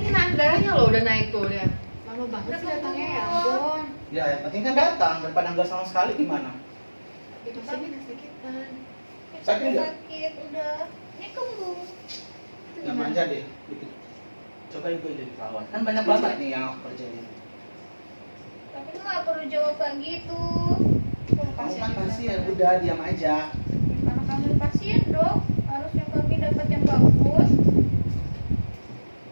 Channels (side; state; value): both; inverted; correlation -1.00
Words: naik darahnya loh udah naik tuh, lihat. Lama banget sih datangnya, ya ampun. Ya, yang penting kan datang daripada nggak sama sekali gimana? Itu sini kesakitan. Sakit nggak? Sakit udah. Ini kembung. Itu Ya gimana? manja deh. Dikit. Coba ibu jadi perawat. Kan banyak banget nih yang aku kerjain. Tapi lu nggak perlu jawab kayak gitu. Kamu kan pasien, udah diam aja. Karena kami pasien dong, harusnya kami dapat yang bagus.